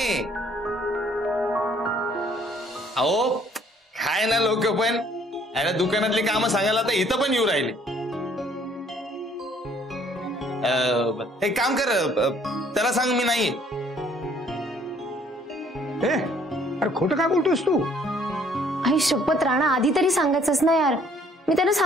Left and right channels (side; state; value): both; normal; correlation 0.61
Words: अहो काय ना लोक पण याला दुकानातली कामं सांगायला तर इथं पण येऊ राहिले. एक काम कर, त्याला सांग मी नाही. अरे खोटं काय बोलतोस तू? आई शपथ राणा, आधी तरी सांगायचंच ना यार. मी त्यांना